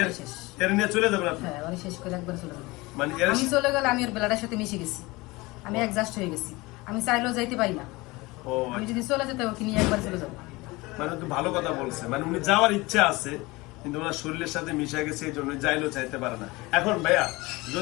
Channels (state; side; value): quieter; right; 22.3 dB